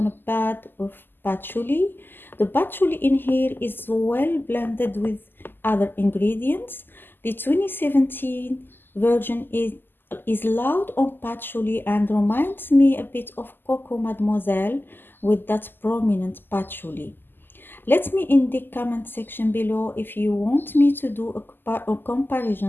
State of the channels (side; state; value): right; late; 0.094 ms